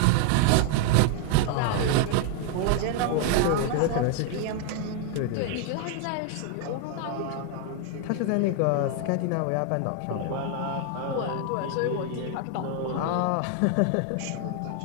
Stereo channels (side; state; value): both; different; correlation 0.00